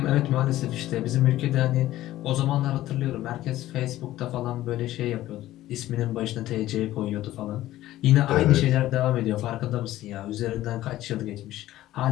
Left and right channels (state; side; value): quieter; right; 14.9 dB